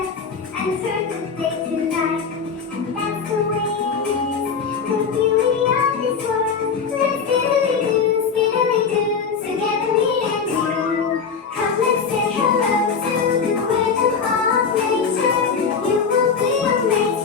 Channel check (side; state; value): right; quieter; 5.8 dB